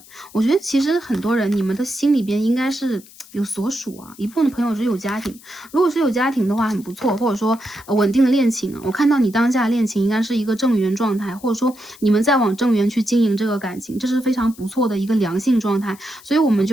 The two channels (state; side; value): noise; left; hiss, 22 dB below the sound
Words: 我觉得其实很多人，你们的心里边应该是有所属啊。一部分的朋友是有家庭，如果是有家庭的话很不错，或者说稳定的恋情啊。我看到你当下恋情应该是一个正缘状态，或者说你们在往正缘去经营这个感情，这是非常不错的一个良性状态。所以我们